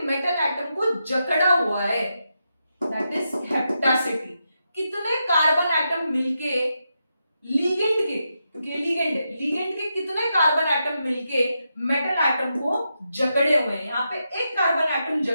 मेटल एटम को जकड़ा हुआ है, दैट इज हेप्टासिटी। कितने कार्बन एटम मिलके लिगेंड के, क्योंकि लिगेंड है, लिगेंड के कितने कार्बन एटम मिलके मेटल एटम को जकड़े हुए हैं? यहाँ पे एक कार्बन एटम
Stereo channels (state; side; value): inverted; both; correlation -0.85